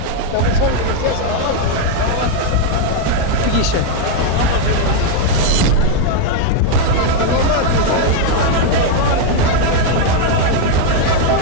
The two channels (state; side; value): different; both; correlation 0.00